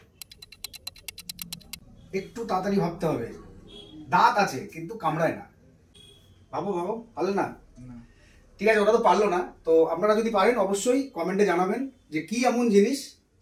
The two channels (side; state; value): both; identical; correlation 1.00